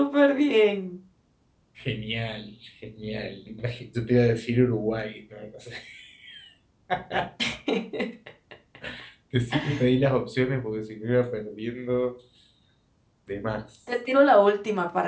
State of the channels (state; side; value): identical; both; correlation 1.00